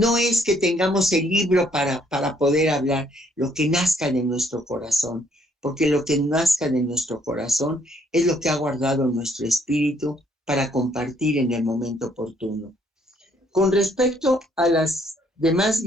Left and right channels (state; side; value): normal; both; correlation 0.67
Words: es que tengamos el libro para poder hablar, lo que nazca de nuestro corazón, porque lo que nazca de nuestro corazón es lo que ha guardado nuestro espíritu para compartir en el momento oportuno. Con respecto a las demás